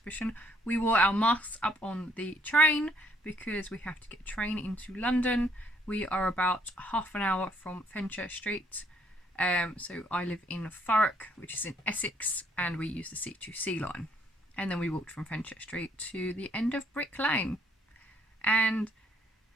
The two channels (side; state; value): both; normal; correlation 0.67